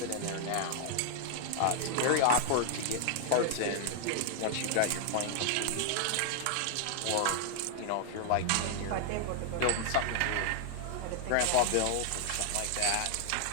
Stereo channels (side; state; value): both; different; correlation 0.00